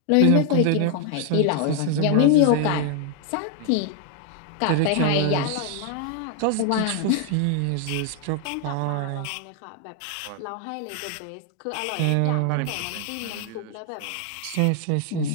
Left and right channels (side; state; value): both; different; correlation 0.00